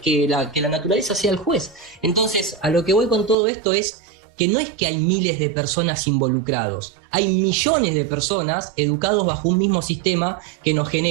la naturaleza sea el juez. Entonces, a lo que voy con todo esto es que no es que hay miles de personas involucrados, hay millones de personas educados bajo un mismo sistema que nos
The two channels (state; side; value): drops out; left; at 3.4 s